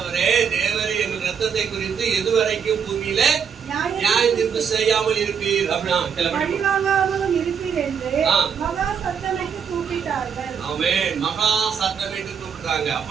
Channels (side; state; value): left; quieter; 7.1 dB